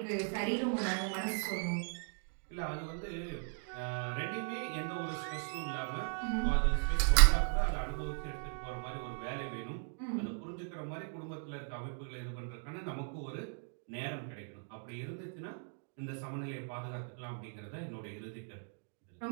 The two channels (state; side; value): silent; left; 53 dB below the other